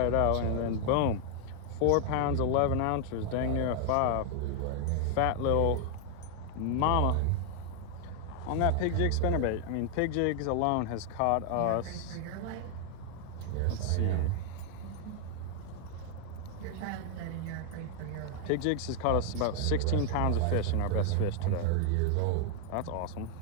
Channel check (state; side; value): different; both; correlation 0.00